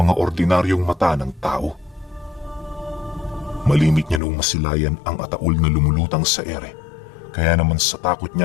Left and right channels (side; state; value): right; drops out; at 4.2 s